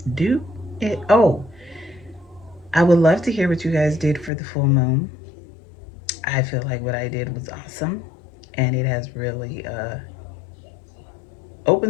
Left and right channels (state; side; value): drops out; right; at 4.3 s